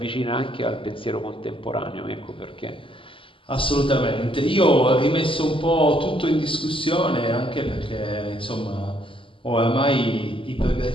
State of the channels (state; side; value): late; right; 0.25 ms